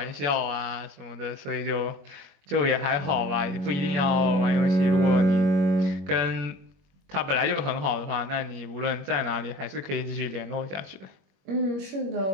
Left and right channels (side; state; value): left; late; 21 ms